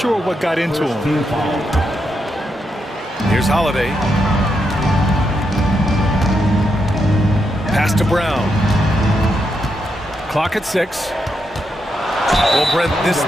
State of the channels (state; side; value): normal; both; correlation 0.82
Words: what got into him. Here's Holiday. Pass to Brown. Clock at 6. Well, Brent, this